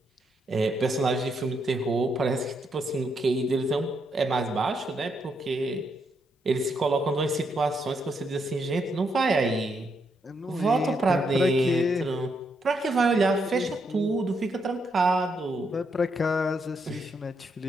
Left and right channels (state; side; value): normal; both; correlation 0.78